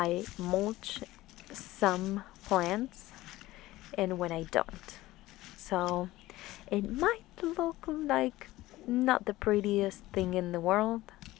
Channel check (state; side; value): quieter; right; 17.3 dB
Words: mulch some plants and when I don't. So it might look like not the prettiest thing in the world,